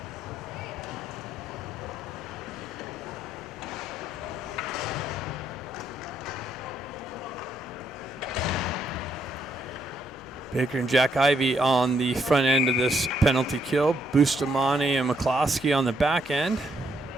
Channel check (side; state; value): both; normal; correlation 0.74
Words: Baker and Jack Ivey on the front end of this penalty kill. Bustamante and McCloskey on the back end.